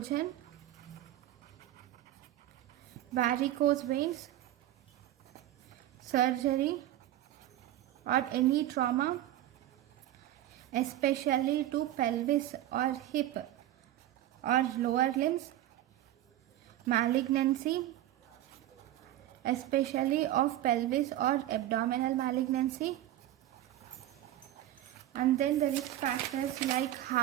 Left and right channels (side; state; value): left; quieter; 13.6 dB